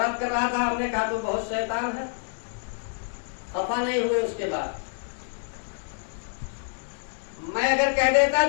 कर रहा था, हमने कहा तो बहुत शैतान है, खफा नहीं हुए। उसके बाद मैं अगर कह देता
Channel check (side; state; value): right; silent; digital silence